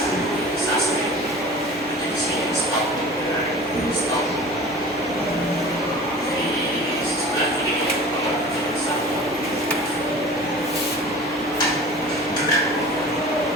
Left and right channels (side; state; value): both; normal; correlation 0.40